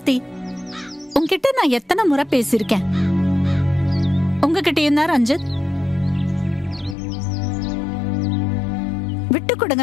உங்ககிட்ட நான் எத்தனை முறை பேசியிருக்கேன். உங்ககிட்டயும் தான் ரஞ்சித். விட்டு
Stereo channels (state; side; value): drops out; right; at 7.0 s